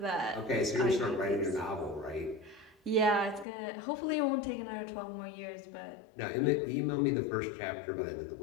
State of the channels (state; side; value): drops out; right; at 3.5 s